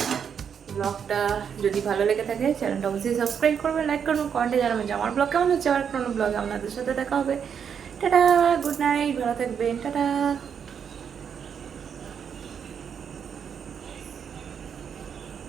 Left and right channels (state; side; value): quieter; left; 7.5 dB